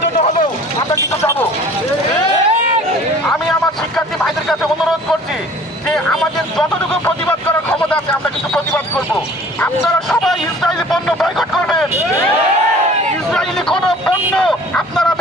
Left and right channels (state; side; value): normal; both; correlation 0.49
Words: জন্য হলেও আমরা কিন্তু যাবো। আমি আমার শিক্ষার্থী ভাইদের কাছে অনুরোধ করছি যে আমাদের যতটুকু প্রতিবাদ করার ক্ষমতা আছে আমরা কিন্তু প্রতিবাদ করব। আপনারা সবাই ইসরায়েলি পণ্য বয়কট করবেন, ইসরায়েলি কোনো পণ্য আপনারা